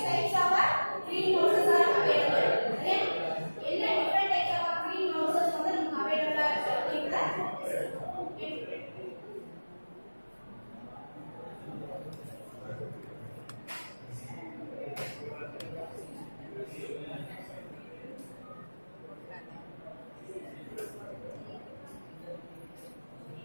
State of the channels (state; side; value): inverted; both; correlation -1.00